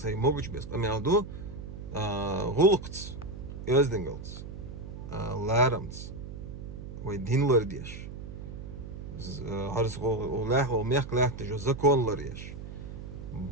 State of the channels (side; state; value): right; noise; hum, 10 dB below the sound